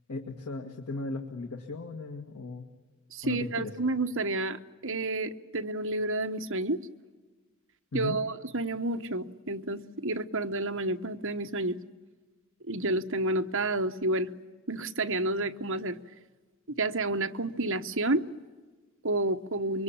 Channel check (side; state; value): both; normal; correlation -0.09